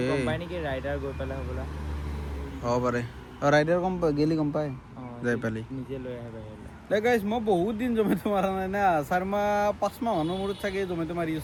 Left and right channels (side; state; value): both; identical; correlation 1.00